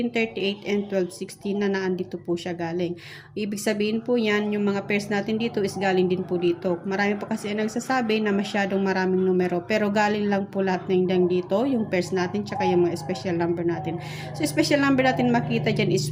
and 1216 na naandito po siya galing. Ibig sabihin po yan, yung mga pairs natin dito is galing din po dito. Marami po kasi ang nagsasabi na masyadong maraming numero, pero galing lang po lahat ng dito, yung pairs natin, tsaka yung mga special number natin. So, special number natin makita dyan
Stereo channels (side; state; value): both; identical; correlation 1.00